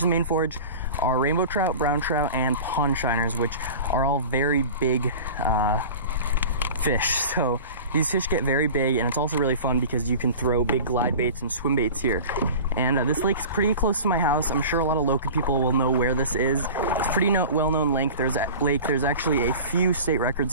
main forage are rainbow trout, brown trout, and pond shiners, which are all very big fish. So these fish get very big, and it's also really fun because you can throw big glide baits and swim baits here. And this lake's pretty close to my house. I'm sure a lot of local people will know where this is. It's a pretty well-known lake. There's actually a few state records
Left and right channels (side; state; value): both; inverted; correlation -0.37